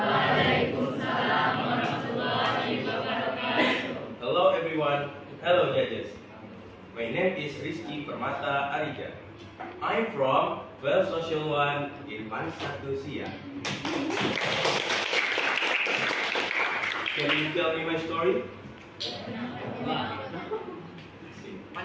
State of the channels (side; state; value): both; identical; correlation 1.00